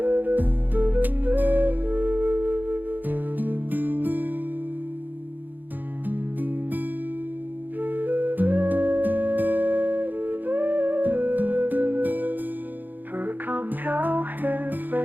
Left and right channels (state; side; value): late; left; 0.087 ms